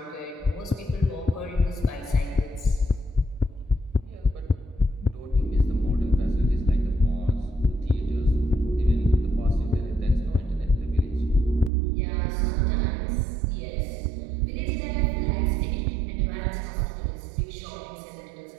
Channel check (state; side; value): drops out; left; at 11.7 s